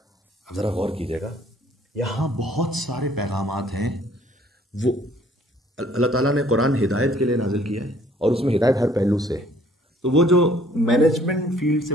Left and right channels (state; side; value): normal; both; correlation 0.59